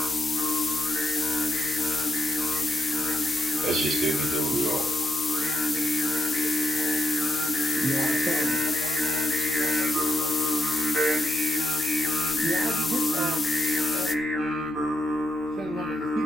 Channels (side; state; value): both; normal; correlation 0.83